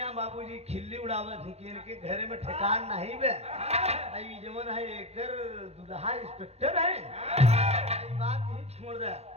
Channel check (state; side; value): late; left; 0.31 ms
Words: बाबूजी खिल्ली उड़ावत थी कि इनके घर में ठिकान नहीं बे आई जमन है एकर दुल्हा इंस्पेक्टर है। आई बात ही छोड़ दे।